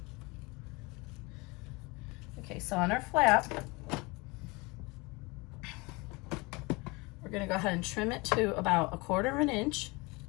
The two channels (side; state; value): right; quieter; 25.8 dB